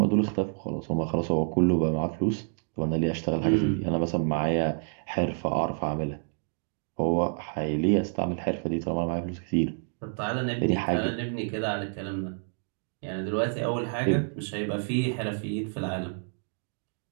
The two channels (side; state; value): left; silent; 59 dB below the other